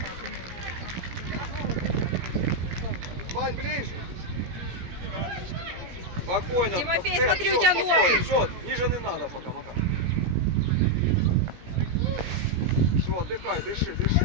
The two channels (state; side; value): late; left; 17 ms